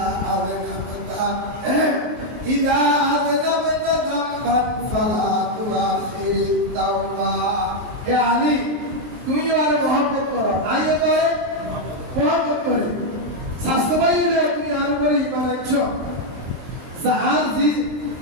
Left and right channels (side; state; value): left; late; 23 ms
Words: আযনাবতা ইদা আযনাবতা যামবান ফালা তুআখিরিত তাওবা। হে আলী, তুই আর মহব্বত করো, আইও তো মহব্বত করে। স্বাস্থ্য ভাই হলে তুমি আর করে ইমান আনছো, আর যে